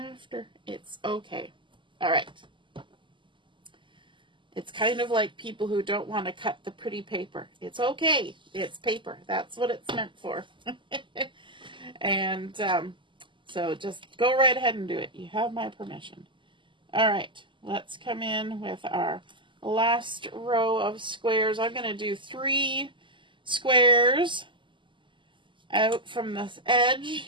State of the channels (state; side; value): late; left; 0.24 ms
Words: It's okay. All right. It's kind of like people who don't want to cut the pretty paper. It's okay. It's paper. That's what it's meant for. And so just go right ahead and do it. You have my permission. All right. Let's come in with our last row of squares. I'm going to do 3 squares out from this edge